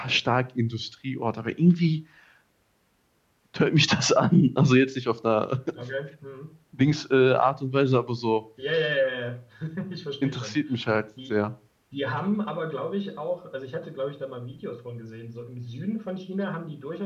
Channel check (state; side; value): identical; both; correlation 1.00